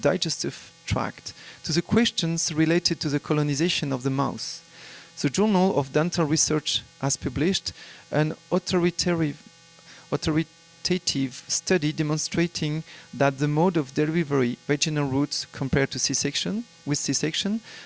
tract to the questions related to the colonization of the mouth. The Journal of Dental Research has published an authoritative study demonstrating that the mode of delivery, vaginal route compared to C-section,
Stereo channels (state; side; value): identical; both; correlation 1.00